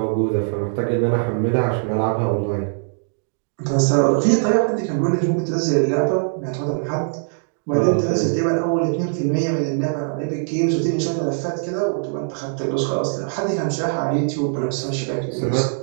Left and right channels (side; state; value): left; silent; digital silence